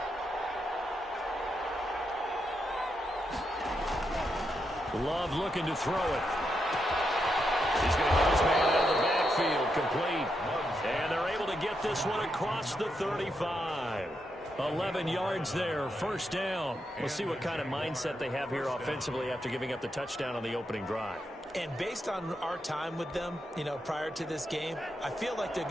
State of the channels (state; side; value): normal; both; correlation 0.83